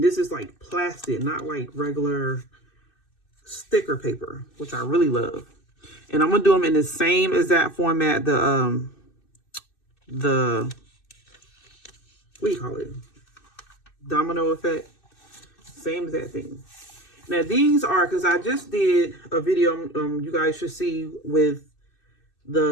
this is like plastic, not like regular sticker paper, which I really love. And I'm gonna do them in the same exact format, the what do you call it, domino effect, same exact thing. Now these are, because I just did a video you guys should see with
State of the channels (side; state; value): right; late; 2.6 ms